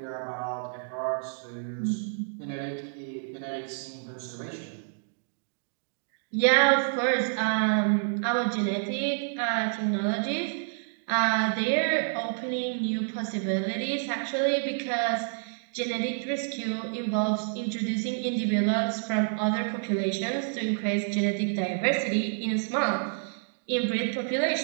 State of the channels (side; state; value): left; silent; digital silence